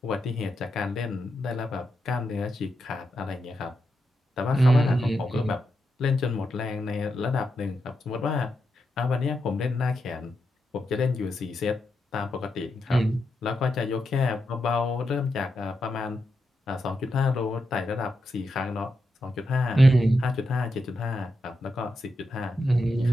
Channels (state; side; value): normal; both; correlation 0.85